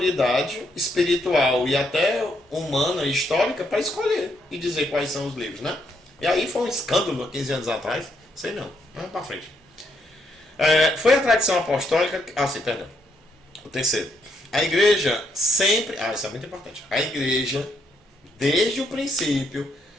espiritual e até humana e histórica para escolher e dizer quais são os livros, né? E aí foi um escândalo há 15 anos atrás. Sei não. Vamos para frente. Foi a tradição apostólica. Perdão. O terceiro. A igreja sempre. Isso é muito importante. A igreja, desde o princípio,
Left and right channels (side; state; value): both; normal; correlation 0.75